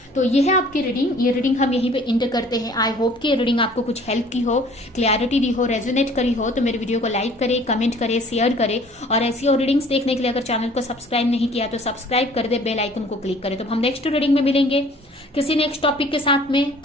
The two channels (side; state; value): both; normal; correlation 0.53